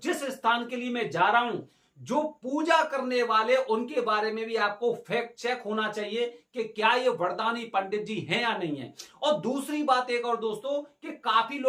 स्थान के लिए मैं जा रहा हूं, जो पूजा करने वाले, उनके बारे में भी आपको फैक्ट चेक होना चाहिए कि क्या ये वरदानी पंडित जी हैं या नहीं है। और दूसरी बात एक और दोस्तों, कि काफी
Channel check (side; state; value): both; identical; correlation 1.00